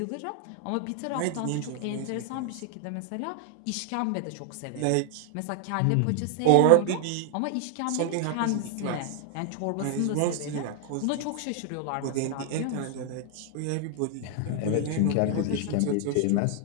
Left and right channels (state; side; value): different; both; correlation 0.00